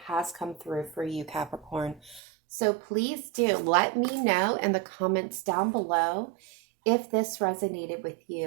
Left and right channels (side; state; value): left; drops out; at 2.2 s